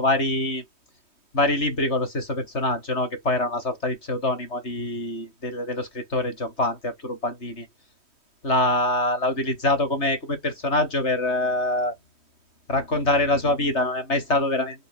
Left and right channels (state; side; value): late; right; 3.2 ms